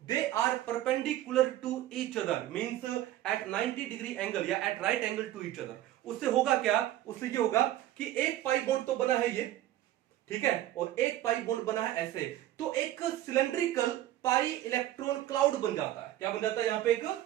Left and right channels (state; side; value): quieter; left; 13.8 dB